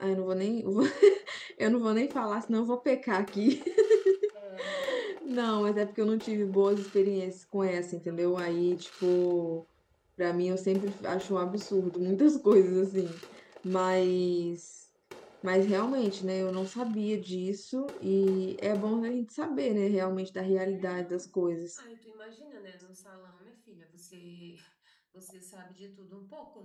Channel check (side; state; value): both; identical; correlation 1.00